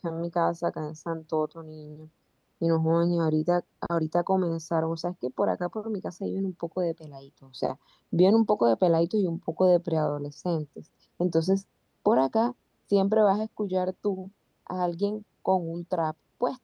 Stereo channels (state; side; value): identical; both; correlation 1.00